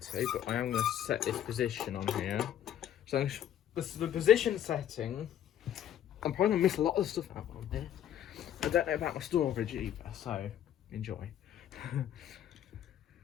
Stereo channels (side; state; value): right; quieter; 10.6 dB